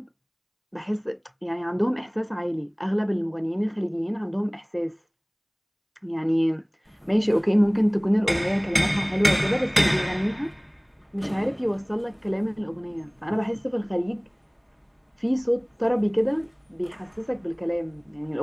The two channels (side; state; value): both; identical; correlation 1.00